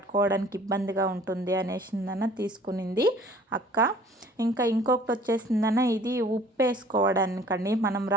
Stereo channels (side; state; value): both; normal; correlation 0.52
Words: ఇబ్బందిగా ఉంటుంది అనేసిందన తీసుకునింది అక్క. ఇంకా ఇంకొకటి వచ్చేసిందన ఇది ఉప్పు వేసుకోవడానికండి, మనం